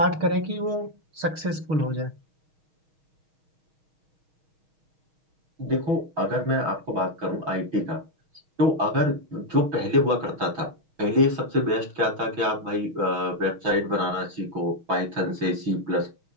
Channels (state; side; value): late; left; 6.3 ms